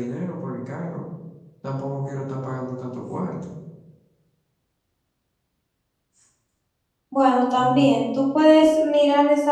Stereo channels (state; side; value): identical; both; correlation 1.00